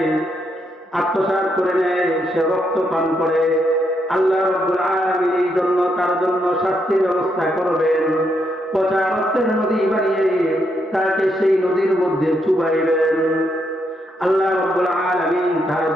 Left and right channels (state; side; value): normal; both; correlation 0.78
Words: করে নেয়, সে রক্ত পান করে। আল্লাহ রাব্বুল আলামিন এই জন্য তার জন্য শাস্তির ব্যবস্থা করবেন। পচা রক্তের নদী বানিয়ে তাকে সেই নদীর মধ্যে চুবাইবেন। আল্লাহ রাব্বুল আলামিন তার